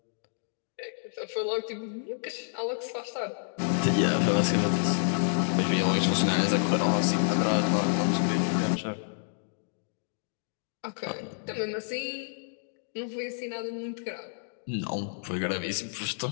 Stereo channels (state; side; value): silent; right; digital silence